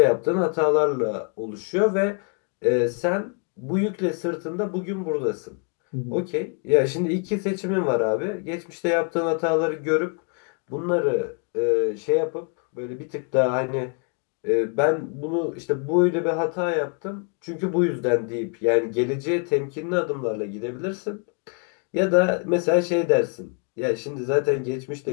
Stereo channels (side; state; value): right; quieter; 39.6 dB